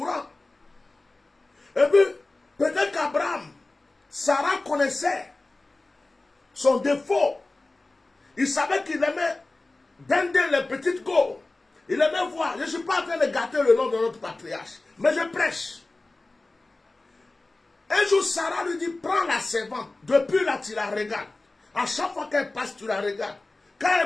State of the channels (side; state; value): right; quieter; 3.1 dB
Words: Et puis, peut-être qu'Abraham, Sarah connaissait son défaut Il savait qu'il aimait dender les petites go. Il aimait voir. Je ne suis pas en train de gâter le nom de notre patriarche, mais je prêche. Un jour, Sarah lui dit, prends la servante. Depuis là, tu la regardes. À chaque fois qu'elle passe, tu la regardes. Quand